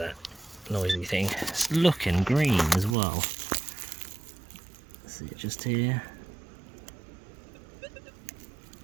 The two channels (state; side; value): drops out; left; at 3.0 s